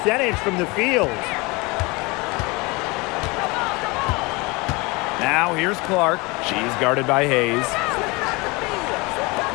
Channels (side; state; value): right; quieter; 25.5 dB